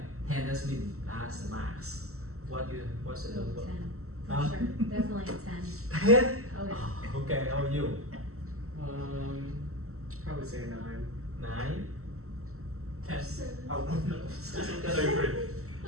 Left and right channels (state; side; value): late; left; 0.63 ms